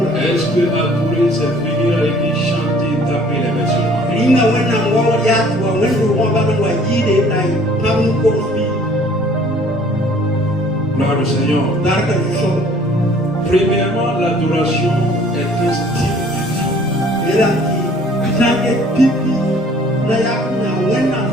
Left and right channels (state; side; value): normal; both; correlation 0.55